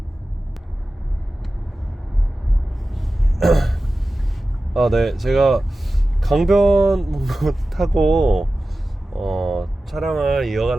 네, 제가 강변 타고 촬영을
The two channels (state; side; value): normal; both; correlation 0.95